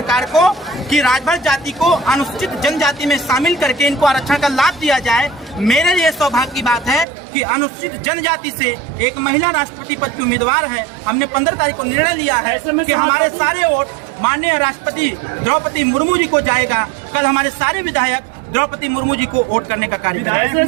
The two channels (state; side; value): drops out; left; at 7.1 s